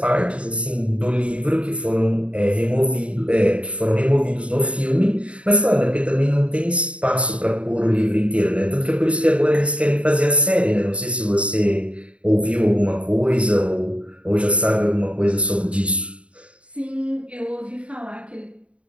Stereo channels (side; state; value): left; late; 0.061 ms